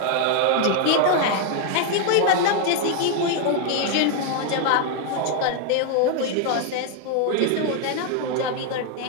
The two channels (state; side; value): different; both; correlation 0.00